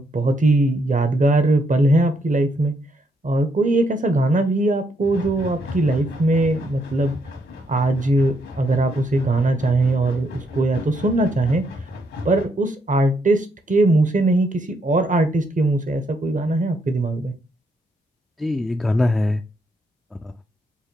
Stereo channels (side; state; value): both; normal; correlation 0.75